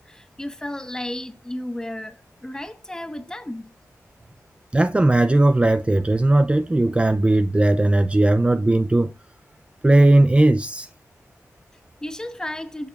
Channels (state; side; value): normal; both; correlation 0.98